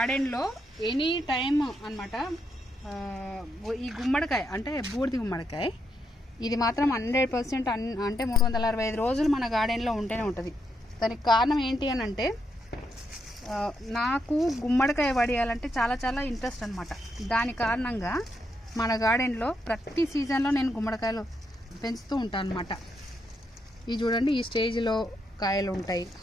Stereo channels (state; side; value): normal; both; correlation 0.80